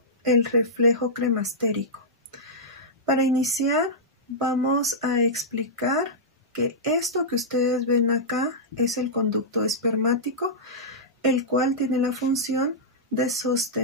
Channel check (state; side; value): normal; both; correlation -0.12